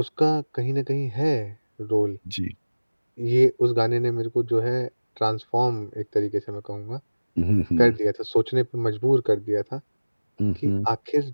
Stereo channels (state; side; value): inverted; both; correlation -1.00